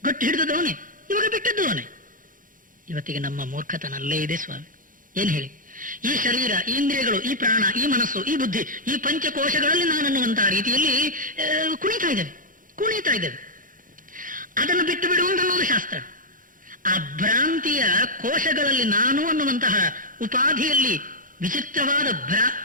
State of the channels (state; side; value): late; left; 0.39 ms